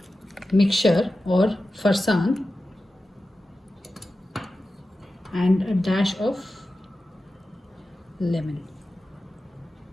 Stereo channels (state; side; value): normal; both; correlation 0.93